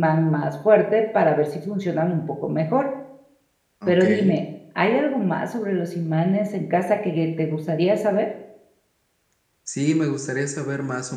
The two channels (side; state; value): both; identical; correlation 1.00